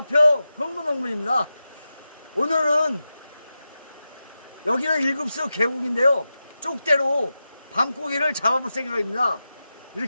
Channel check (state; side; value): inverted; both; correlation -0.92